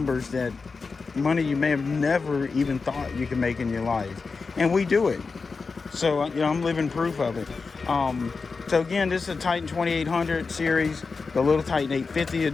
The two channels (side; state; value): right; quieter; 4.5 dB